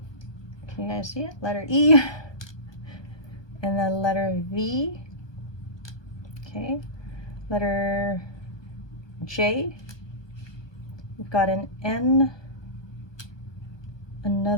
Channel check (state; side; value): late; right; 1.2 ms